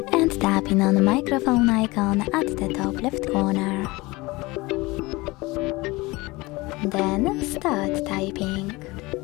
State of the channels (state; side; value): quieter; right; 22.4 dB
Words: and tapping on the microphone icon at the top left corner. Then start typing.